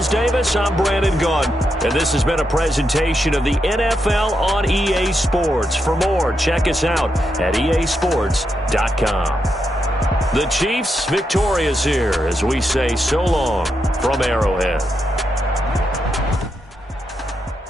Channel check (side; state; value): both; normal; correlation 0.83